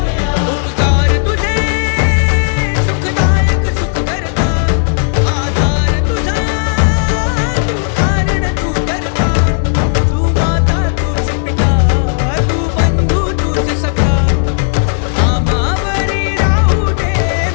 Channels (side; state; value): right; silent; digital silence